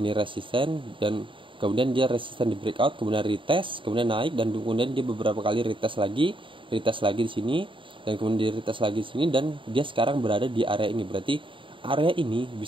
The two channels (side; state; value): left; late; 0.25 ms